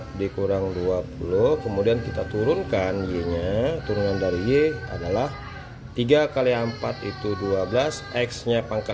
dikurang 20. Kemudian kita turunkan Y-nya, turunan dari Y adalah 3 kali 4 itu 12, X-nya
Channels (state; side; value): identical; both; correlation 1.00